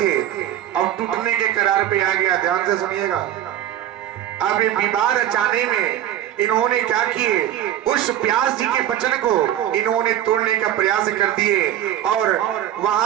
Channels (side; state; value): left; quieter; 11.7 dB